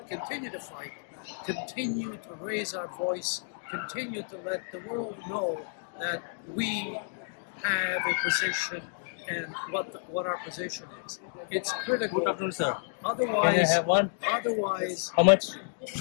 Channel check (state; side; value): silent; right; digital silence